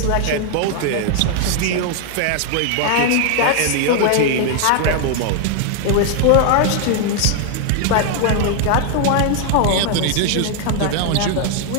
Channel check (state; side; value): different; both; correlation 0.00